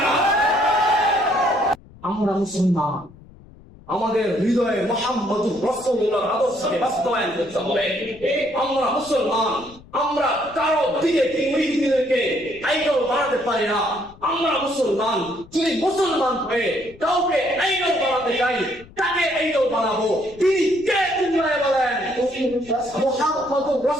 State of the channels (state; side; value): noise; left; rumble, 23 dB below the sound